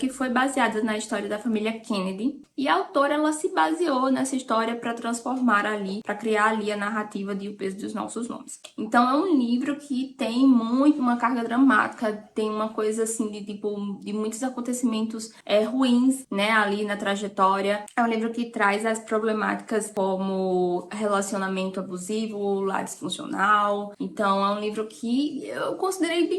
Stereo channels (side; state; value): both; identical; correlation 1.00